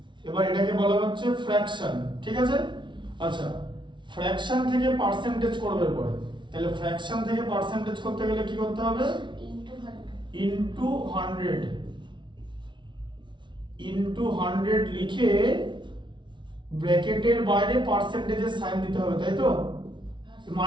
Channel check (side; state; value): left; late; 0.24 ms